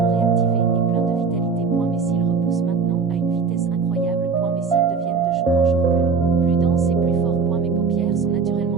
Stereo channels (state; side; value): quieter; left; 5.1 dB